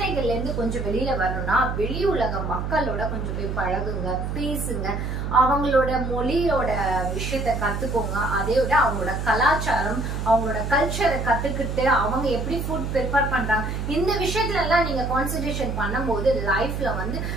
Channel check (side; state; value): right; noise; hum, 3 dB below the sound